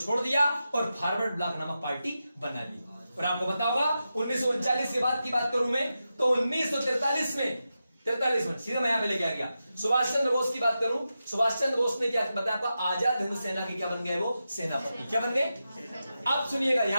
दिया और फॉरवर्ड ब्लॉक नामक पार्टी बना ली। और आपको पता होगा 1939 के बाद की बात करूं मैं, तो 1943 में 43 में सीधा मैं यहां पे लेके आ गया। सुभाष चंद्र बोस की बात करूं, सुभाष चंद्र बोस ने क्या बताया आपका? आजाद हिंद सेना के क्या बन गए? वो सेनापति। क्या बन गए? अब सुनिएगा,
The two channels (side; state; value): both; inverted; correlation -0.90